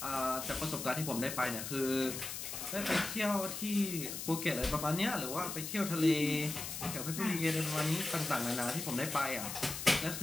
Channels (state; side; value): noise; left; hiss, 6 dB below the sound